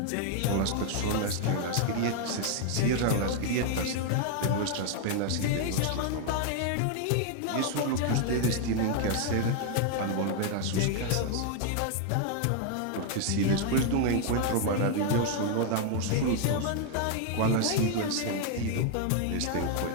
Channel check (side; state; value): both; different; correlation 0.00